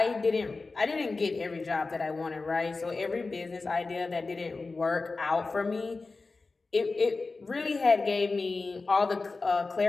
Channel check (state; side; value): quieter; right; 3.8 dB